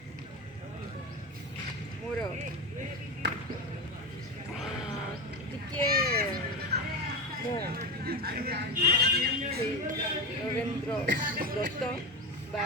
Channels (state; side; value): normal; both; correlation 0.21